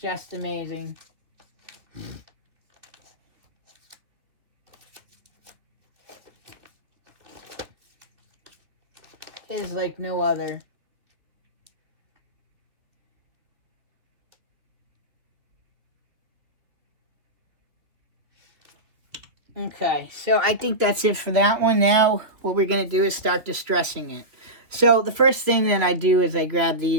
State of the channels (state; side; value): late; left; 2.8 ms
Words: amazing. Is like no other. Okay, so I think that's it for that one. Now, what we're going to do is start distressing it. So, the first thing that I do is I grab